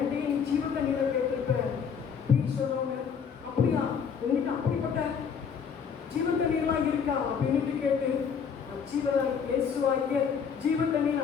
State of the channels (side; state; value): right; quieter; 6.7 dB